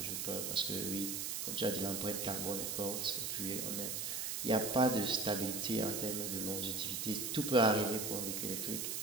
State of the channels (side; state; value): right; noise; hiss, 2 dB below the sound